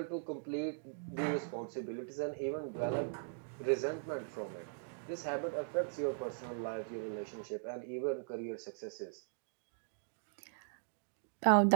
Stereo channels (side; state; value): left; silent; digital silence